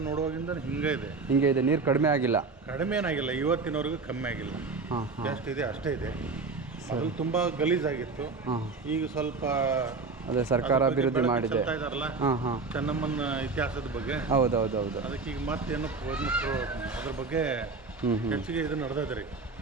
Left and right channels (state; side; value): quieter; left; 4.2 dB